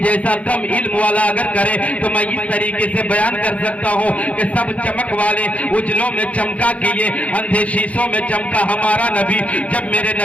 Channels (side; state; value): right; late; 0.066 ms